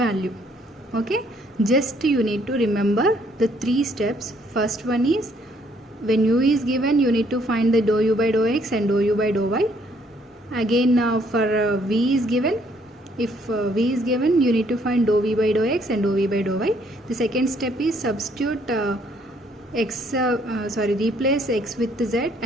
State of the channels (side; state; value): both; normal; correlation 0.66